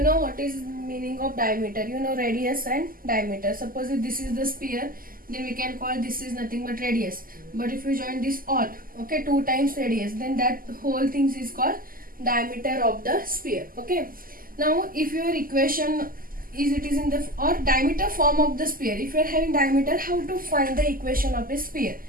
know what is meaning of diameter. You know radius and diameter. Suppose if this is the sphere, then we can call this is nothing but radius. But if you join this all, okay, 2 times radius, then that whole thing is called diameter of the sphere. Okay. Now if your equation is it is in the or diameter form of the sphere, if you are having diameter, how to find the equation of a sphere?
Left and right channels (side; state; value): left; late; 0.42 ms